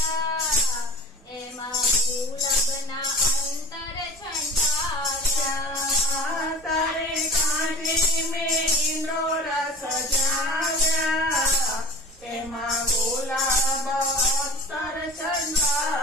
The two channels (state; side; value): normal; both; correlation 0.38